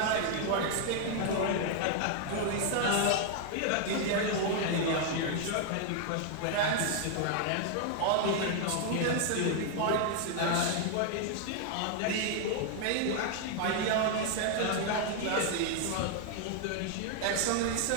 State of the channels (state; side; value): different; both; correlation 0.00